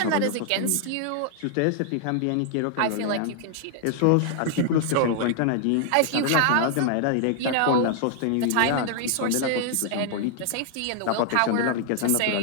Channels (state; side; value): different; both; correlation 0.00